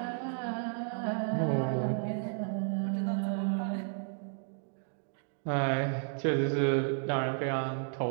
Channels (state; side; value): silent; left; digital silence